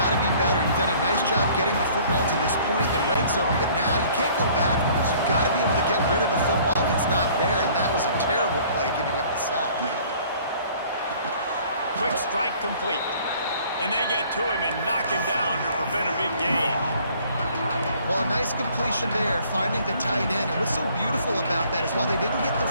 to be better. You've done a nice job getting the football to this point in the red zone, but now you can't go backwards. You've got to be able to get rid of the football if it's not there, and that was a terrible play giving up the sack. Quick strike complete. And they get to him and knock him down to prevent a big gain. Well, a nice completion there, finding the tight end. And what's so beautiful about that is while they didn't get the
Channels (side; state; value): both; inverted; correlation -0.55